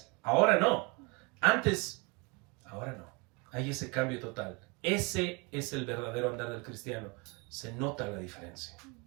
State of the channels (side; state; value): left; quieter; 29.5 dB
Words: ahora no. Antes, ahora no. Hay ese cambio total. Ese es el verdadero andar del cristiano. Se nota la diferencia.